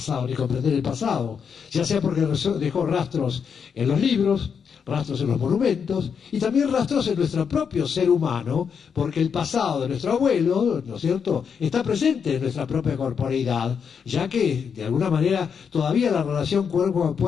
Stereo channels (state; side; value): quieter; right; 6.7 dB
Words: ni comprender el pasado, ya sea porque dejó rastros en los libros, rastros en los monumentos, y también rastros en nuestro propio ser humano, porque el pasado de nuestro abuelo, ¿no es cierto?, está presente en nuestra propia corporeidad, ya que, de alguna manera, todavía la relación cuerpo a